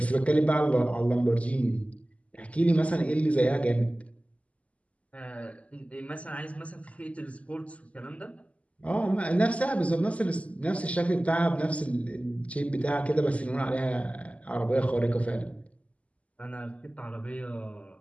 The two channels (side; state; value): right; late; 0.067 ms